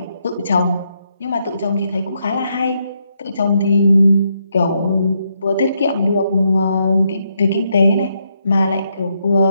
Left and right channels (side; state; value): both; inverted; correlation -0.78